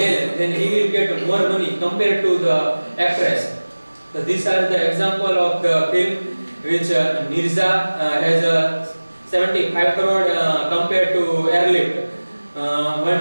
then he will get more money compared to the actress. So these are the example of the film which Mirza has 75 crore compared to Airlift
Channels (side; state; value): both; inverted; correlation -1.00